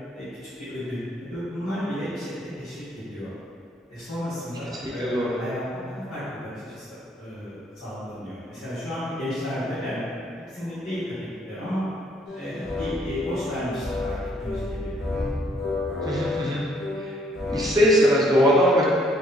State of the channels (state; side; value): normal; both; correlation 0.65